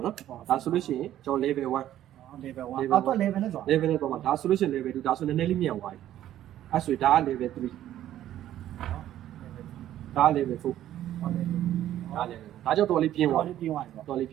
ာနော်ဒါဆိုလို့ရှိရင်ကျွန်တော် level 1 level 1အောက်တော့ level နဲ့ဆို level နဲ့တော့မှာဒါဆိုလို့ရှိရင် level 2ဒါဆိုနည်းနည်းလေးမြန်သွားပြီအဲ့ဆိုဒါက level 3ဒါက level 4ဒါ level ဒါကြောင့်တော်လေးပြင်းသွား တော်လေးပြင်းသွားပြီ တော်လေးပ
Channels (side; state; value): left; quieter; 12.4 dB